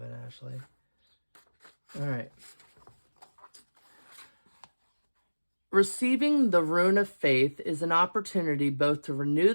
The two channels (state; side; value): inverted; both; correlation -1.00